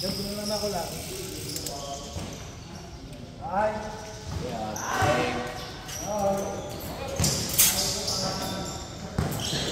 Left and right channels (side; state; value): both; identical; correlation 1.00